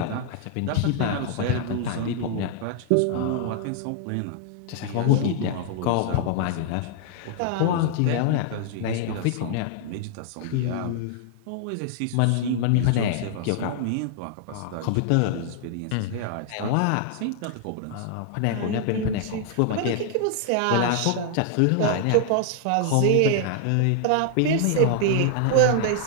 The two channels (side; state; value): both; different; correlation -0.01